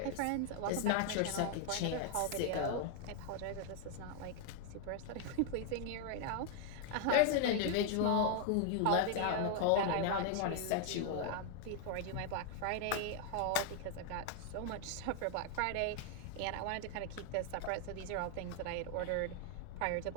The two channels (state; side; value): different; both; correlation 0.00